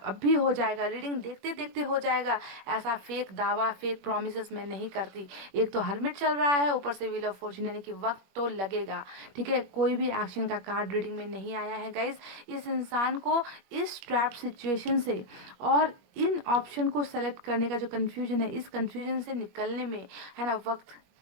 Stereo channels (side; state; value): left; late; 21 ms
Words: भी हो जाएगा, रीडिंग देखते देखते हो जाएगा। ऐसा फेक दावा, फेक प्रोमिस मैं नहीं करती। एक तो हर्मिट चल रहा है, ऊपर से व्हील ऑफ फॉर्चून, यानी कि वक्त तो लगेगा, ठीक है। कोई भी एक्शन का कार्ड रीडिंग में नहीं आया है गाइस। इस इंसान को इस ट्रैप सिचुएशन से और इन ऑप्शन को सेलेक्ट करने का जो कंफ्यूजन है, इस कंफ्यूजन से निकलने में, है ना, वक्त